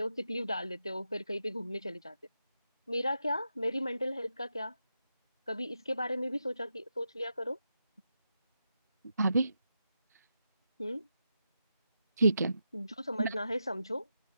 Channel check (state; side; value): inverted; both; correlation -0.87